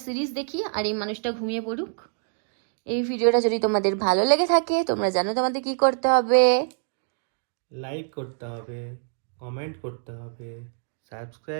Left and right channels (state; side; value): silent; left; digital silence